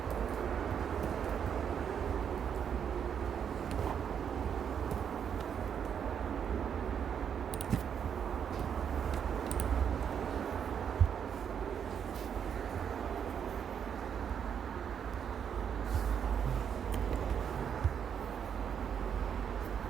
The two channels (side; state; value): left; quieter; 7.9 dB